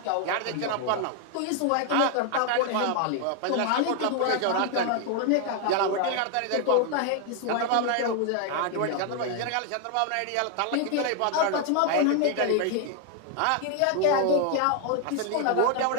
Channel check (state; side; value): different; both; correlation 0.01